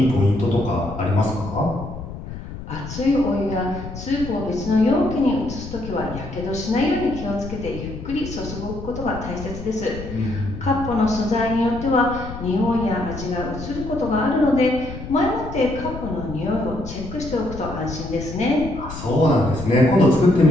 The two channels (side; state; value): left; noise; rumble, 10 dB below the sound